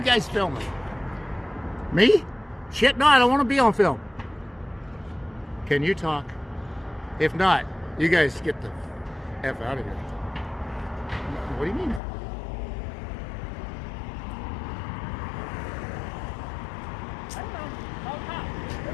guys filming? Me? Shit, no, I don't want to be on film. Can you talk? If not, you guys get the F out of here. What do you mean? I don't know.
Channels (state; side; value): drops out; right; at 12.0 s